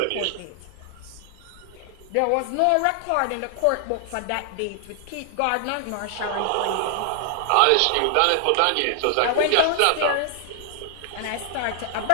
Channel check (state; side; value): different; both; correlation 0.00